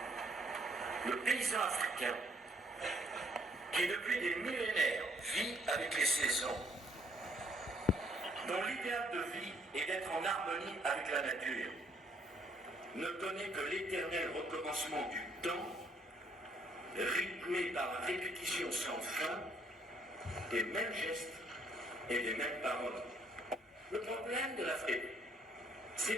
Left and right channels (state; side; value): normal; both; correlation 0.67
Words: Le paysan africain, qui depuis des millénaires vit avec les saisons, dont l'idéal de vie est d'être en harmonie avec la nature, ne connaît que l'éternel recommencement du temps, rythmé par la répétition sans fin des mêmes gestes et des mêmes paroles. Le problème de l'Afrique,